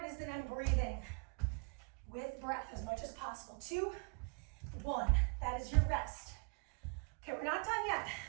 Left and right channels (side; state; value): left; quieter; 35.1 dB